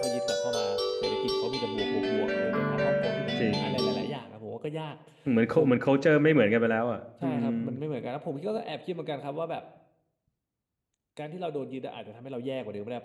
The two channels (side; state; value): both; identical; correlation 1.00